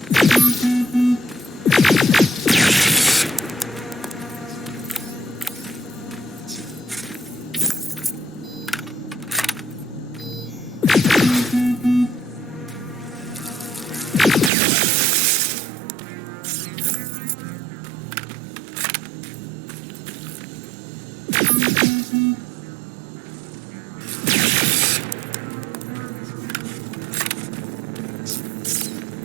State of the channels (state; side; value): drops out; left; at 14.5 s